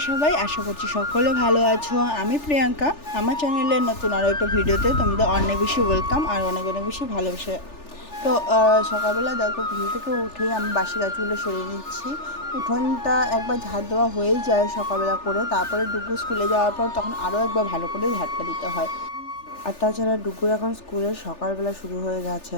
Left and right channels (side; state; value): right; late; 3.4 ms